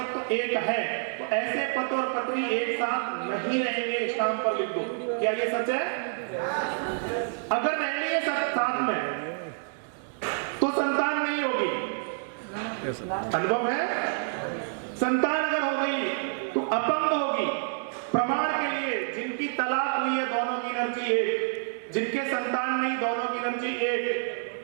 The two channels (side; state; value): left; silent; digital silence